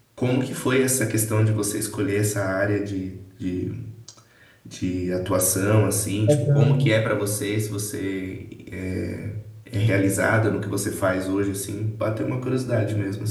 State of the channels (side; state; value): both; identical; correlation 1.00